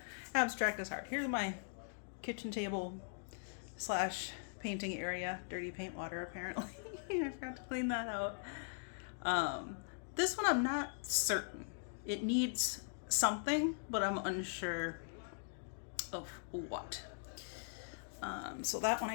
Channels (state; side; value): silent; right; digital silence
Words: abstract is hard. Here's my kitchen table slash painting area. Dirty paint water, apparently. I forgot to clean that out. This one I'm not certain. It needs something, but I'm unsure of what. So that one